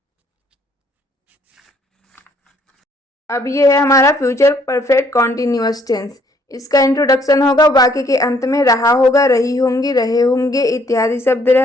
अब ये है हमारा फ्यूचर परफेक्ट कॉन्टिन्यूअस टेंस। इसका इंट्रोडक्शन होगा, वाक्य के अंत में रहा होगा, रही होंगी, रहे होंगे इत्यादि शब्द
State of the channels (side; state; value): both; normal; correlation 0.65